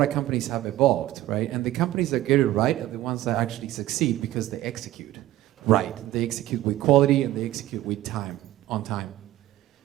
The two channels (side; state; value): left; quieter; 15.1 dB